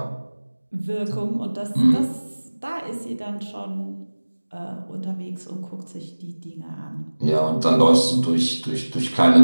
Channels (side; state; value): both; inverted; correlation -1.00